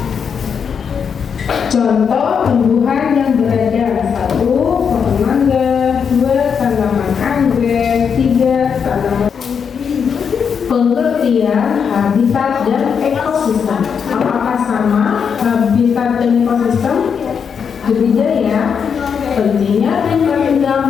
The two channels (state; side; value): quieter; right; 6.8 dB